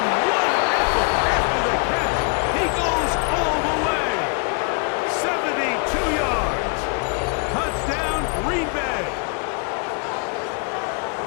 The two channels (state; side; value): quieter; right; 35.4 dB